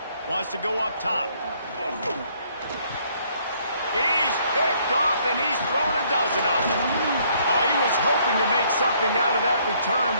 Wants to go up top. He's picked off, and he's thrown a dozen of them. Oh, he was hoping to make something out of that return,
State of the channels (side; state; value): both; inverted; correlation -0.65